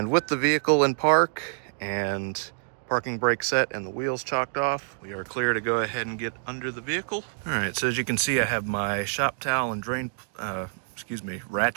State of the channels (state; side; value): silent; left; digital silence